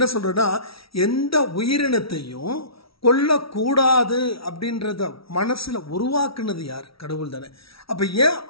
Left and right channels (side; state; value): right; late; 0.75 ms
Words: சொல்றேன்னா, எந்த உயிரினத்தையும் கொல்லக்கூடாது அப்படின்றத மனசுல உருவாக்குனது யார்? கடவுள் தானே. அப்ப ஏன்